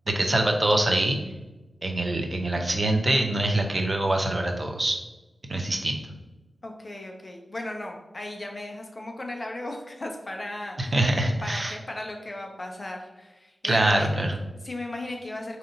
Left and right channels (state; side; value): normal; both; correlation 0.92